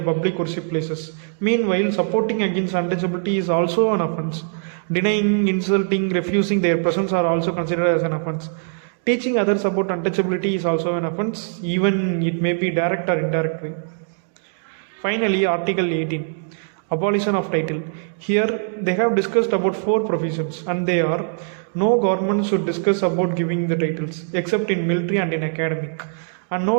worship places. Meanwhile, supporting against untouchability is also an offence. Denying, insulting, refusing their presence are also considered as an offence. Teaching others about untouchability is also an offence, even it may be direct or indirect way. Finally, Article 18, Abolition of Title. Here, they have discussed about 4 provisions, and they are: no government should discuss about giving the titles, except in military and in academic. And no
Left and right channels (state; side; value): silent; left; digital silence